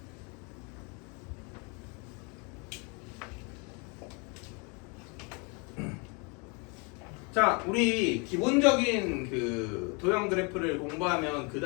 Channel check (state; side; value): quieter; right; 32.3 dB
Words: 자, 우리 기본적인 그 도형 그래프를 공부하면 그